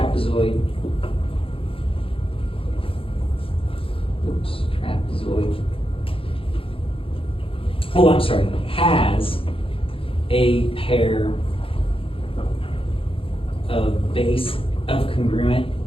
has a pair of congruent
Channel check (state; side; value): late; right; 0.27 ms